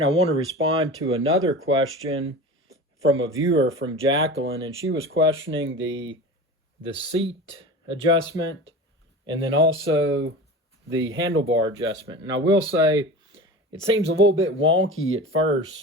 I want to respond to another question from a viewer from Jacqueline, and she was questioning the seat adjustment and then also the handlebar adjustment. And I will say it seems a little bit wonky at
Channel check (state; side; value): normal; both; correlation 0.33